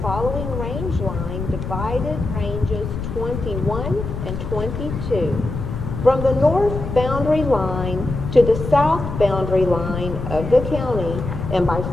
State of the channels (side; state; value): left; noise; rumble, 6 dB below the sound